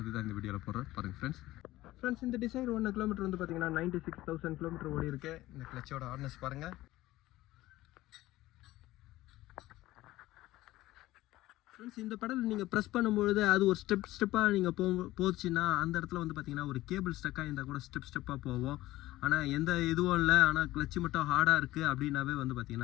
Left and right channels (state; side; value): quieter; right; 16.8 dB